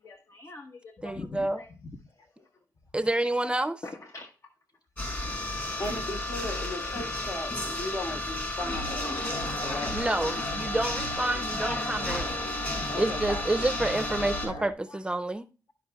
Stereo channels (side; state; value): both; normal; correlation 0.71